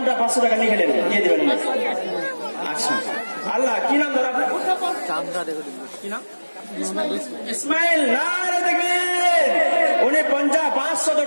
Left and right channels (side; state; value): both; inverted; correlation -1.00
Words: 500 টাকা নিয়ে গেলেন, দিয়ে দেবেন। আচ্ছা আল্লাহ কি নাম দাদা আপনার? কি নাম? ইসমাইল। নারে তাকবীর। উনি 500